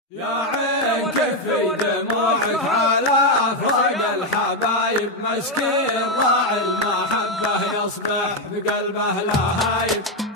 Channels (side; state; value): both; normal; correlation 0.05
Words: يا عين كفي دموعك على أفراق الحبايب، مسكين راعي المحبة يصبح بقلبه لهايب.